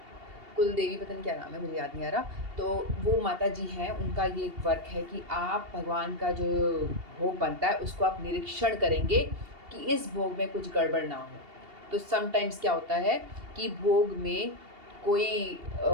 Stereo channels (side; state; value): left; late; 2.8 ms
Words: कुल देवी पता नहीं क्या नाम है मुझे याद नहीं आ रहा, तो वो माता जी हैं, उनका ये वर्क है कि आप भगवान का जो भोग बनता है उसको आप निरीक्षण करेंगे कि इस भोग में कुछ गड़बड़ ना हो। तो समटाइम्स क्या होता है कि भोग में कोई